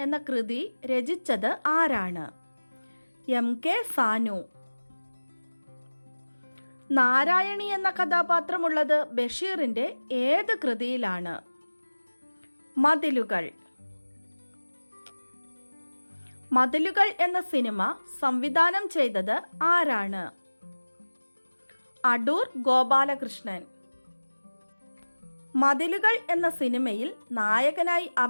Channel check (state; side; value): inverted; both; correlation -1.00